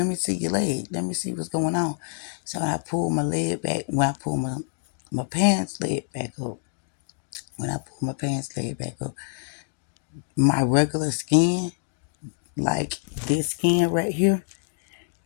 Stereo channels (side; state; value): right; silent; digital silence